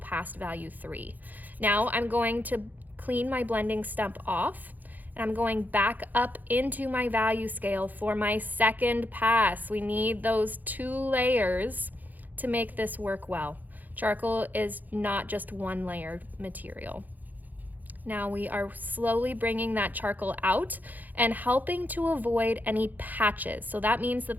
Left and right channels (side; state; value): left; late; 0.083 ms